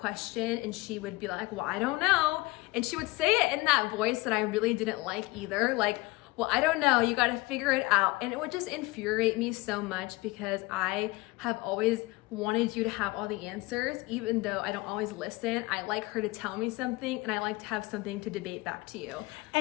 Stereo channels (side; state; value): right; quieter; 21.8 dB